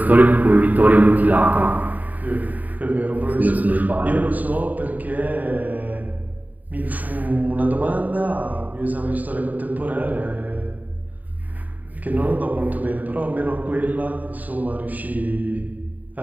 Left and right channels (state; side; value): late; left; 0.078 ms